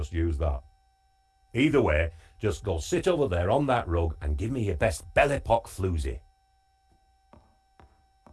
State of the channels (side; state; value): both; identical; correlation 1.00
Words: use that. Either way, just go sit over there on that rug and give me your best Belle Epoque floozy.